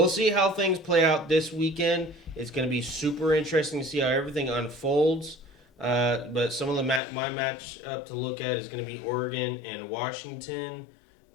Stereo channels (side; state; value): right; drops out; at 7.0 s